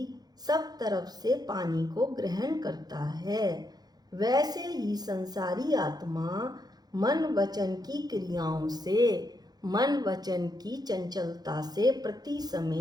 सब तरफ से पानी को ग्रहण करता है। वैसे ही संसारी आत्मा मन वचन की क्रियाओं से, मन वचन की चंचलता से प्रति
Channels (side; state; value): left; late; 0.19 ms